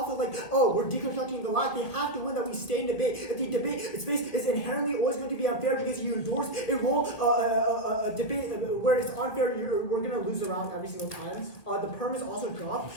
of like, oh, we're deconstructing the lack, they have to win that we stay in debate. If the debate space is inherently always going to be unfair because you endorse a role, a debate where it's unfair, we're going to lose around every single time. The perm is also dropped.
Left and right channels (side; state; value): right; late; 1.7 ms